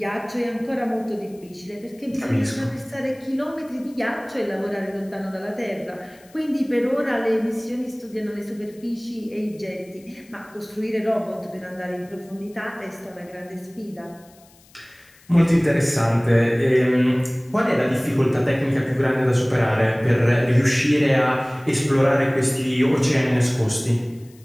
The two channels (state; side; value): noise; left; hiss, 28 dB below the sound